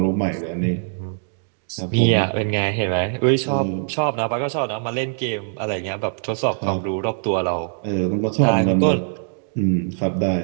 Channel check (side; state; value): left; silent; digital silence